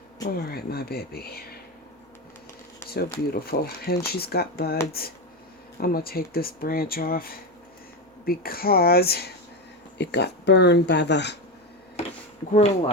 All right, my baby. So beautiful. And she's got buds. I'm going to take this branch off because it got burned by the grow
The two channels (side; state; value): both; normal; correlation 0.15